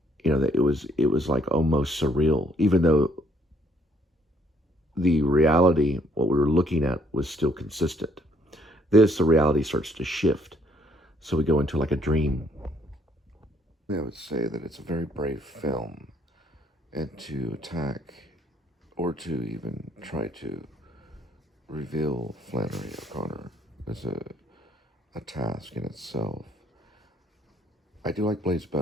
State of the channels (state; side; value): normal; both; correlation 0.66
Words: you know, that it was like almost surreal, even though the reality, what we were looking at, was still consistent. The reality starts to shift. So we go into like a dream. I would say that it's a very brave film, and to attack or to even try to reveal Flannery O'Conner is a task in itself. I do like Blaze